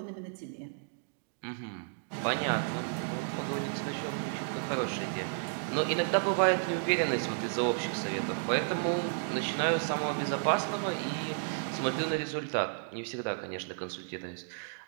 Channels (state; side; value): silent; left; digital silence